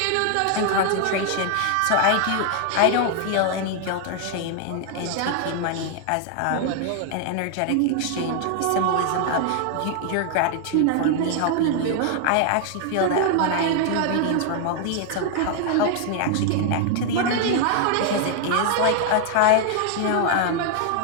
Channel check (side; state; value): both; different; correlation 0.00